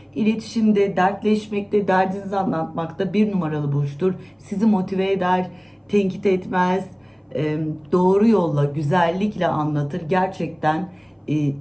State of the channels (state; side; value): identical; both; correlation 1.00